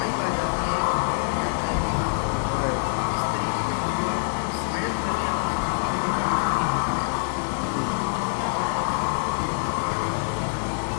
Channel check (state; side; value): silent; right; 62 dB below the other